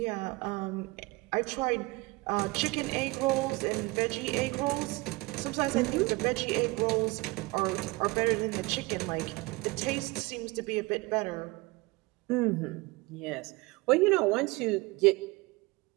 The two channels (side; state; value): left; quieter; 23.4 dB